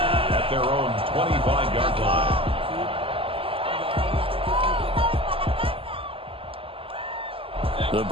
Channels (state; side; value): late; left; 0.26 ms